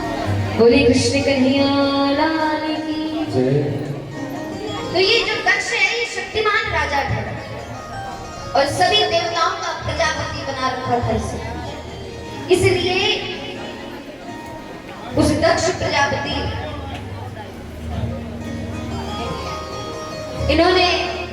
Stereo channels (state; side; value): identical; both; correlation 1.00